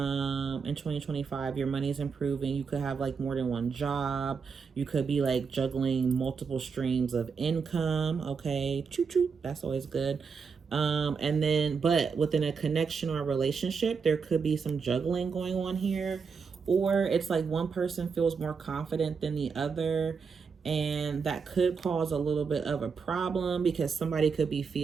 2025, your money is improving. You could have like more than one job. You could be like juggling multiple streams of income. Okay, choo choo, that's always good. And then, but within a connection or a relationship, there could be some juggling going on here, or it's like one person feels more confident than the other, and that could cause a little bit of a problem because somebody could be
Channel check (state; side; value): quieter; left; 5.6 dB